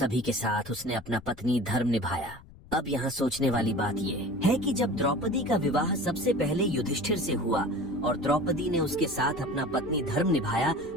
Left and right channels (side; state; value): left; noise; rumble, 21 dB below the sound